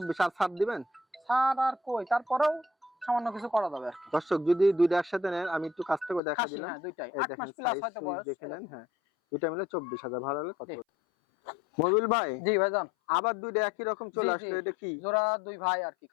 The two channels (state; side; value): drops out; right; at 6.2 s